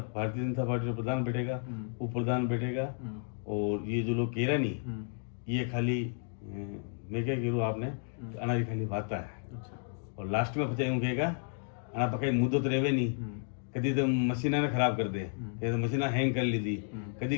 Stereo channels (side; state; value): right; silent; digital silence